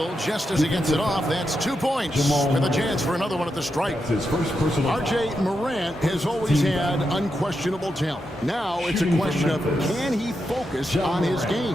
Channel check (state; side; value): normal; both; correlation 0.85